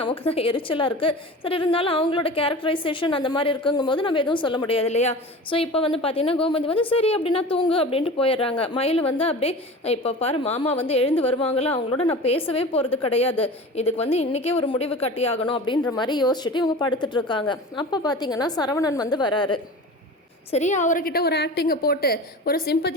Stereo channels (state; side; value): normal; both; correlation 0.35